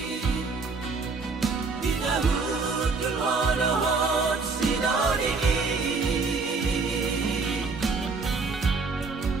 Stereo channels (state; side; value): quieter; left; 4.3 dB